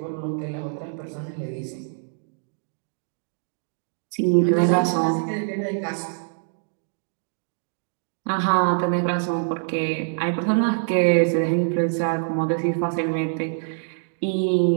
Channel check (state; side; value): silent; left; digital silence